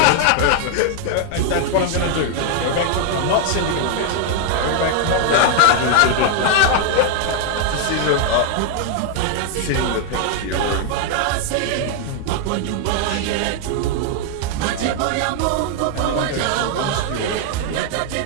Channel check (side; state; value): both; different; correlation 0.00